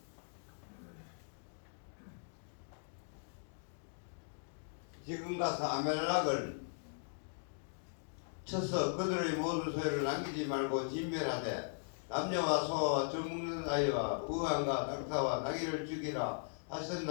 지금 가서 아멜락을 쳐서 그들의 모든 소유를 남기지 말고 진멸하되 남녀와 소와 젖먹는 아이와 우왕과 낙타와 나귀를 죽이라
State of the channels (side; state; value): right; silent; digital silence